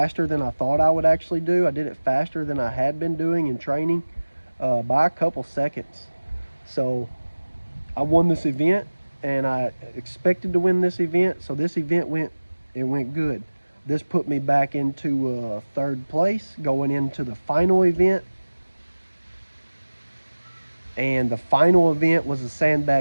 than I thought I would actually do. I did it faster than I had been doing in training by a couple seconds. So I won this event, and I expected to win this event. So this event went good. This put me back into 3rd place going into the final event. And the final event was a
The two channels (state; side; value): inverted; both; correlation -1.00